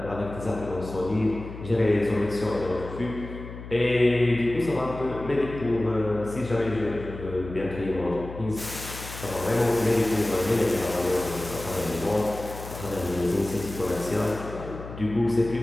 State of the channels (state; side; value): noise; left; hum, 12 dB below the sound